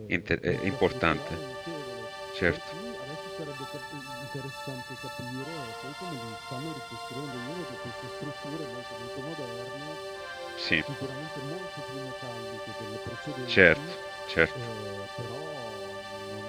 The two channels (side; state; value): both; identical; correlation 1.00